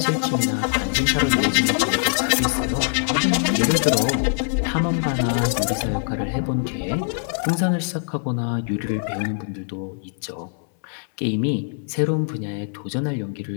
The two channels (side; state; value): right; silent; 64 dB below the other